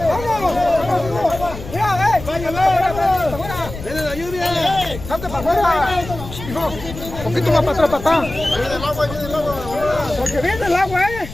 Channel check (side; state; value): left; noise; rumble, 11 dB below the sound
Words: ¡Vamos! ¡Mira, ¡viene la lluvia! ¡Salte para afuera! Hijo, un poquito más para atrás, papá. Viene el agua, viene el agua. Porque viene el agua,